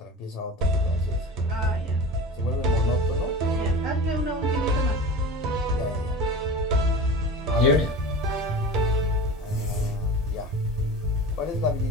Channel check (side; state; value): both; normal; correlation 0.32